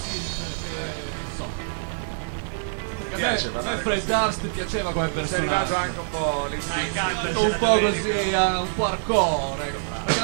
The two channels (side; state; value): left; silent; 61 dB below the other